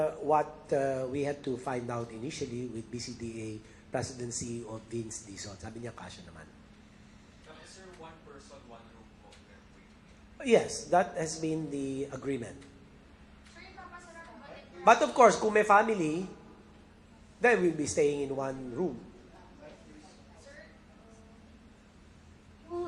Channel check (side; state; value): both; identical; correlation 1.00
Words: what we had to find out initially with BCDA presidency of Vince Dizon. Sabi niya, kasya naman. Sir, one person, one room po. Yes, that has been the agreement. But of course, kung may family, they will be staying in one room.